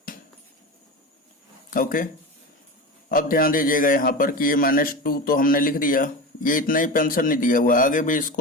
ओके, अब ध्यान दीजिएगा यहाँ पर कि ये -2 तो हमने लिख दिया, ये इतना ही पेंशन नहीं दिया हुआ, आगे भी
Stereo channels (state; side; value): normal; both; correlation 0.26